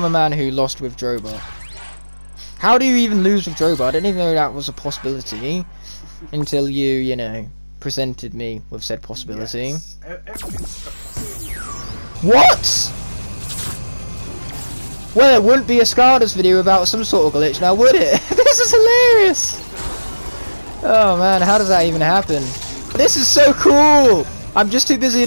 a man who lost with Drobot. How do you even lose with Drobot? I didn't even know that was a possibility until you know, presented me with said possibility. Yes. What? Well, it wouldn't be a Skylanders video without some sort of glitch now, would it? This is hilarious! Oh man, how does that even happen? This is so cool! I'm just too busy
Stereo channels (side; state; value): both; inverted; correlation -1.00